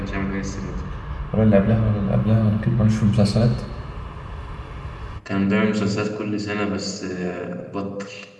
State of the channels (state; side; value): identical; both; correlation 1.00